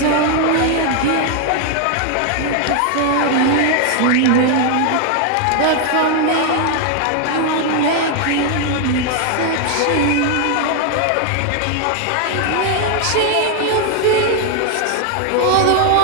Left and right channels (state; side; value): different; both; correlation 0.00